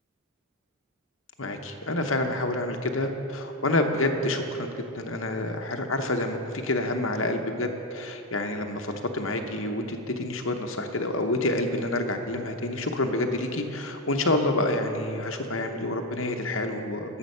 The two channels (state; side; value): normal; both; correlation 0.09